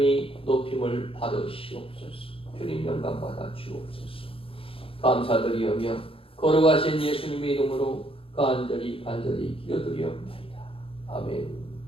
높임을 받으시옵소서. 주님 영광 받아 주옵소서. 감사드리오며 거룩하신 예수님의 이름으로 간절히 기도드리옵나이다. 아멘.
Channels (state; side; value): late; right; 0.27 ms